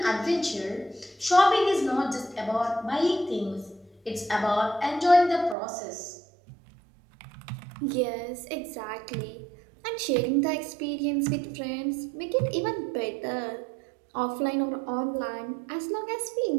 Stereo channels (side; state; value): left; drops out; at 5.6 s